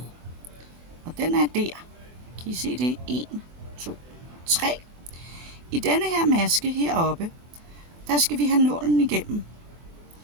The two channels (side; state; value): left; late; 24 ms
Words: Og den er der. Kan I se det? 1, 2, 3. I denne her maske heroppe, der skal vi have nålen igennem.